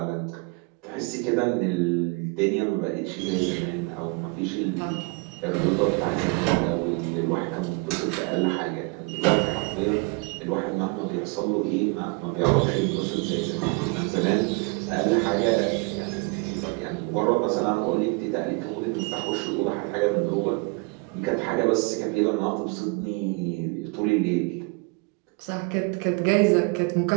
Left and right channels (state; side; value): quieter; left; 30.6 dB